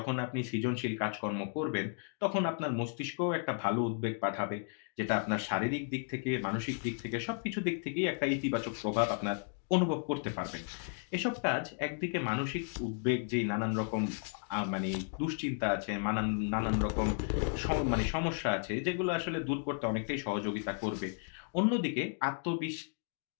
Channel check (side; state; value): right; silent; 55 dB below the other